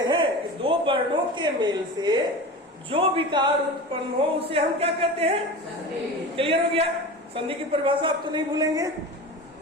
हैं कि दो वर्णों के मेल से जो विकार उत्पन्न हो उसे हम क्या कहते हैं, क्लियर हो गया। संधि की परिभाषा आप तो नहीं भूलेंगे,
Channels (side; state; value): both; normal; correlation 0.31